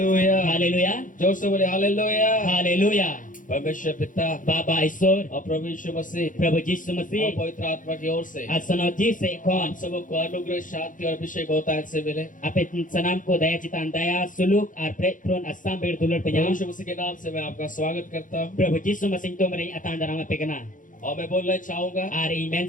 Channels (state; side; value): late; right; 0.38 ms